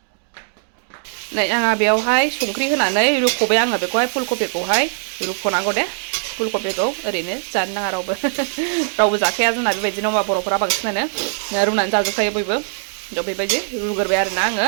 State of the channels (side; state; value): left; silent; digital silence